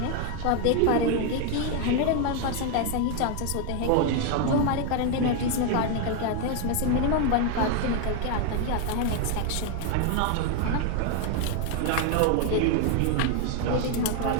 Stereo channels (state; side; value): different; both; correlation 0.01